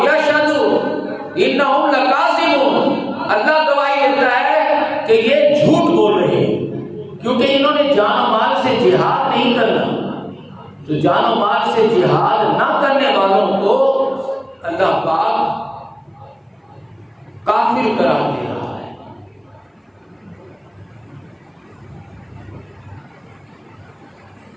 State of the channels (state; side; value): identical; both; correlation 1.00